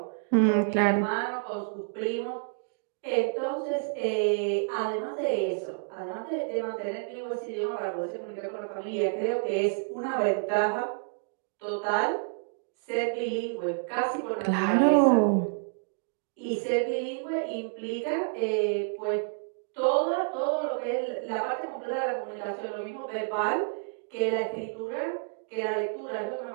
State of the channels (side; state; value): left; silent; digital silence